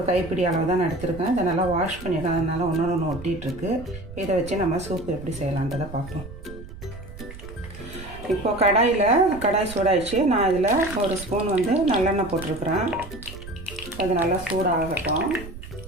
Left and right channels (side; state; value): right; noise; rumble, 14 dB below the sound